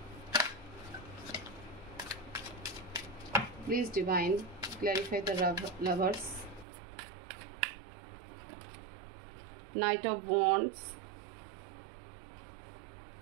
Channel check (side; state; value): left; drops out; at 6.7 s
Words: please divine, clarify the lovers, Knight of Wands,